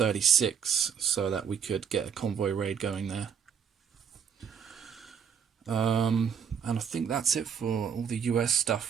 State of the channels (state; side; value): quieter; left; 7.5 dB